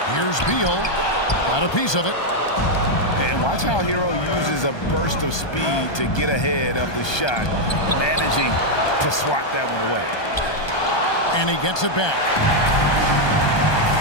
Here's Beal. Got a piece of it. And watch how Hero uses a burst of speed to get ahead of the shot, managing to swat that one away. And he gets it back.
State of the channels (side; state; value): right; late; 1.2 ms